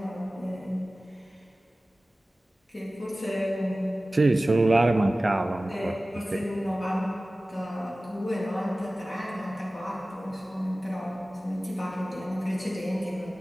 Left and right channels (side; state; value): both; normal; correlation 0.97